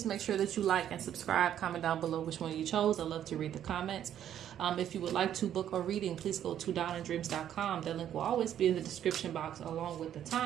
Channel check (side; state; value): left; quieter; 10.4 dB